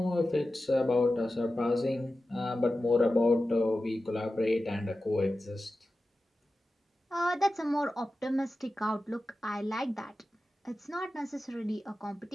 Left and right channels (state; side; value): normal; both; correlation 0.94